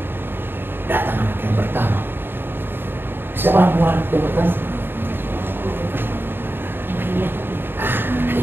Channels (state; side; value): late; left; 0.10 ms